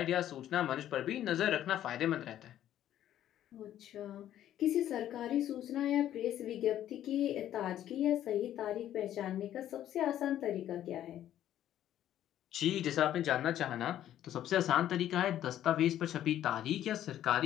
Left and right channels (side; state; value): right; quieter; 11.8 dB